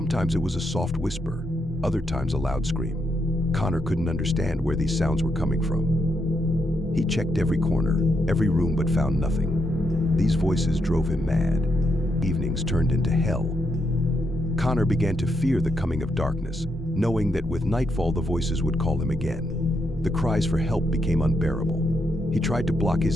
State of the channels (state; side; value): normal; both; correlation 0.80